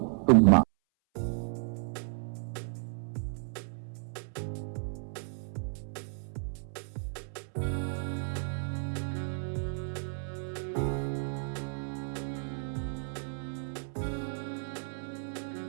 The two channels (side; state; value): left; silent; 56 dB below the other